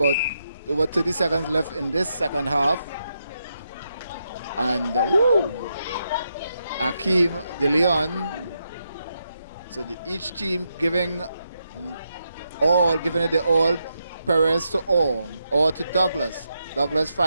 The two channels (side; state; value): both; inverted; correlation -0.83